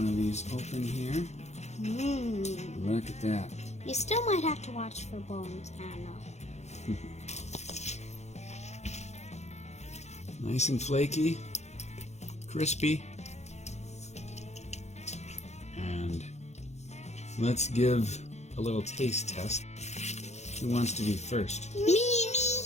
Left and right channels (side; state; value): right; late; 0.32 ms